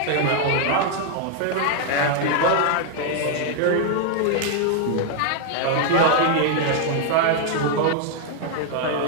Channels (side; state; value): both; different; correlation 0.00